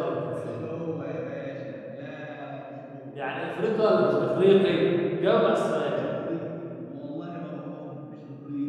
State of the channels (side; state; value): both; identical; correlation 1.00